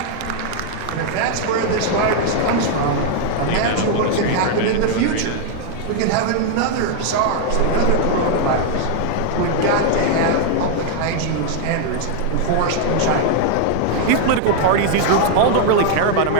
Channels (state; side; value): different; both; correlation 0.00